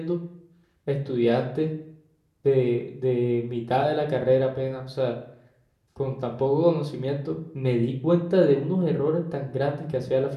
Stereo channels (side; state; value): both; identical; correlation 1.00